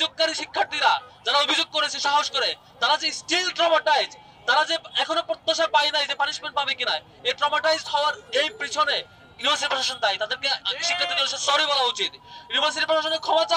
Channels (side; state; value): both; identical; correlation 1.00